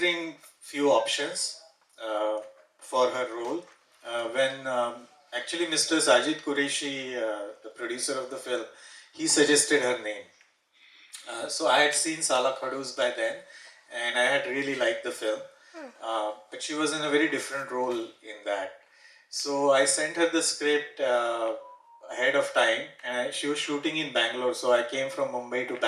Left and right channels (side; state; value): both; identical; correlation 1.00